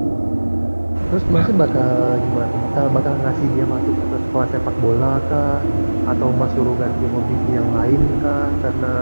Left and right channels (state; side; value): inverted; both; correlation -1.00